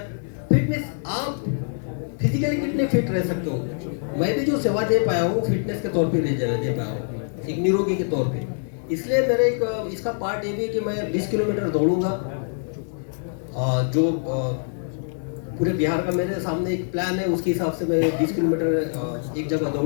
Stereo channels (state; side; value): silent; right; 62 dB below the other